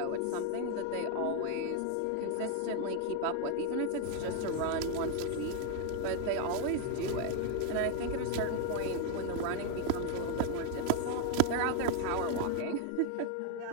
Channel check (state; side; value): different; both; correlation 0.01